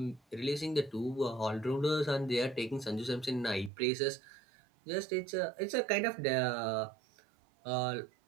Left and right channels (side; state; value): left; drops out; at 3.7 s